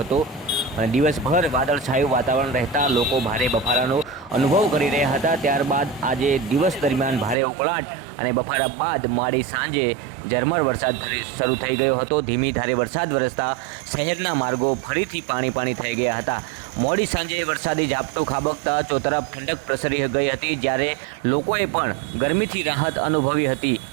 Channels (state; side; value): drops out; left; at 7.4 s